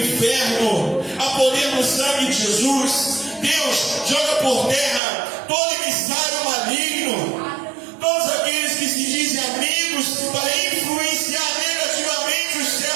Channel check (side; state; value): left; drops out; at 5.0 s